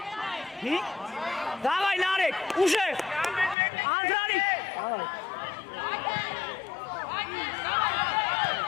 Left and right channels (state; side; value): drops out; right; at 3.6 s